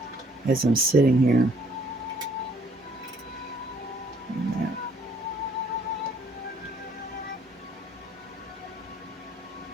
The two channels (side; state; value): both; normal; correlation 0.62